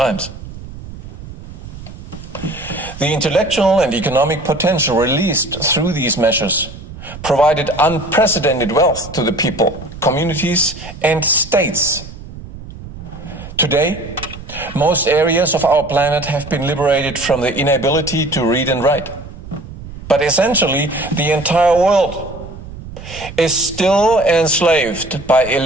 The intellectual and economic potential released through these measures provided unprecedented wealth to the people, communities, and states. Today, most areas of our planet have been liberated from the inability to read and write. But essentially, the entire world is still enslaved by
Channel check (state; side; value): noise; right; rumble, 13 dB below the sound